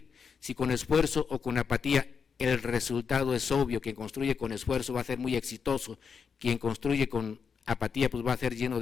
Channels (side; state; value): right; quieter; 6.2 dB